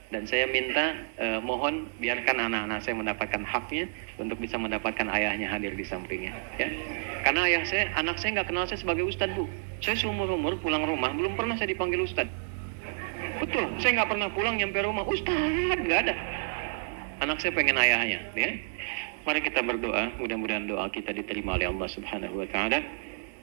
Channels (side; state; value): left; silent; digital silence